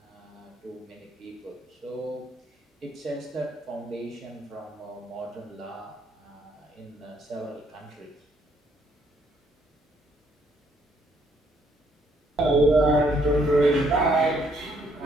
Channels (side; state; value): both; normal; correlation 0.69